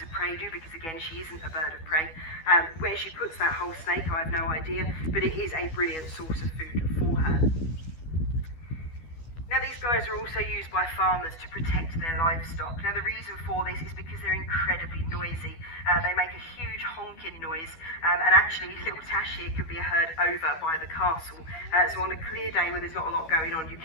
of prey do, because again, she isn't a bird of prey. Where she puts that whole snake, I have no idea, but it is a brilliant source of food for her. Now, these guys are also used by farmers to protect their livestock. Now, the reason for this is because they're incredibly noisy. They make a huge honking noise, and actually little Tash here can be heard over by the castle. So on a clear day where there's not a lot going on, you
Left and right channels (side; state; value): right; late; 12 ms